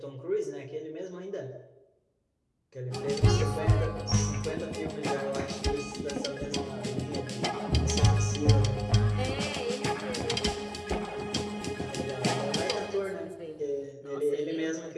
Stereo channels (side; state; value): both; identical; correlation 1.00